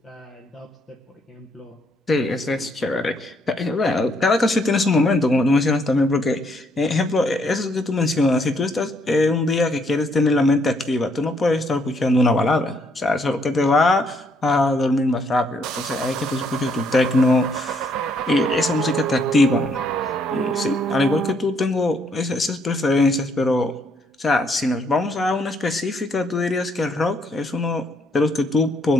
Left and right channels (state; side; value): normal; both; correlation 0.70